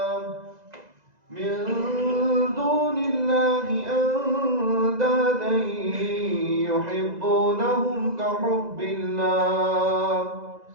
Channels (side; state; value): left; late; 2.0 ms